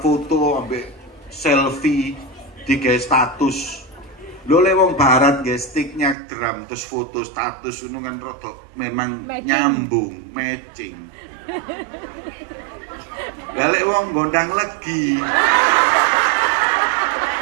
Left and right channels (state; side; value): drops out; left; at 6.2 s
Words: ambek selfie di status. Lo lewong barat nggih sticknya drum terus foto status ngono kan rada memang nyambung, matching. Galek wong gondang legi.